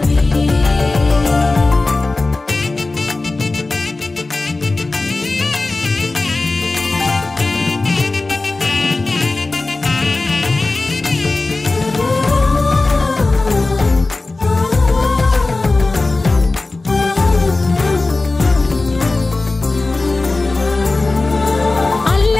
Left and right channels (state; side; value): quieter; right; 3.3 dB